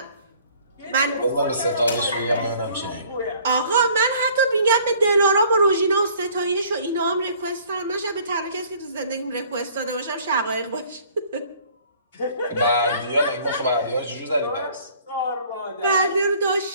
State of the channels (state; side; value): inverted; both; correlation -0.55